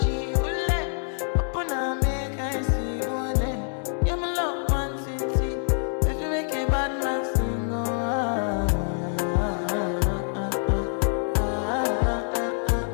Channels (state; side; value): silent; right; 61 dB below the other